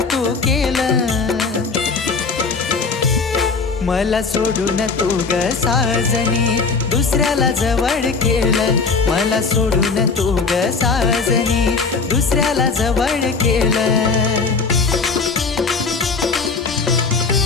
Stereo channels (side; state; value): right; quieter; 4.6 dB